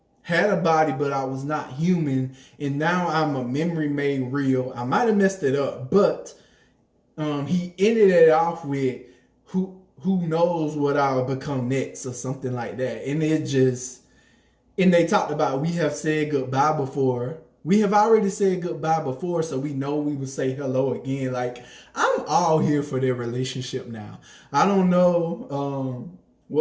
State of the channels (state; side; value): identical; both; correlation 1.00